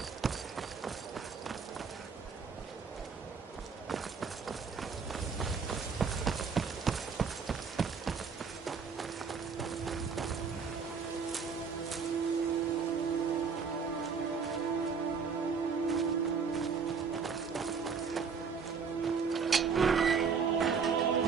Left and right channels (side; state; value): left; quieter; 5.7 dB